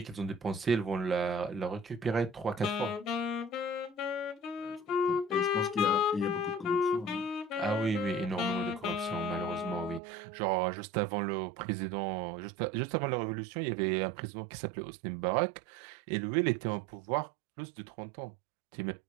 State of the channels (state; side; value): drops out; left; at 10.0 s